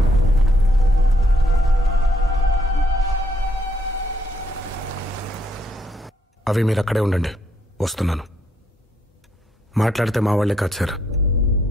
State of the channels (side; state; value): both; normal; correlation 0.73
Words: అవి మీరు అక్కడే ఉండండి, వస్తున్నాను. మాట్లాడితే మా వాళ్లే కాదు సార్,